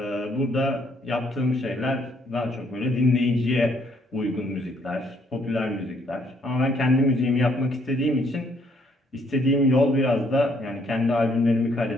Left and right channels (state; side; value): normal; both; correlation 0.68